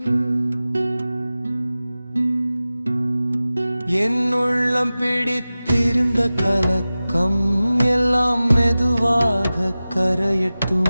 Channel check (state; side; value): inverted; both; correlation -0.96